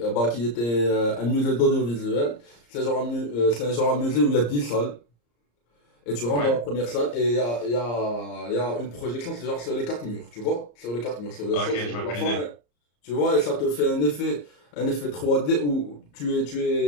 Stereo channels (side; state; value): right; late; 34 ms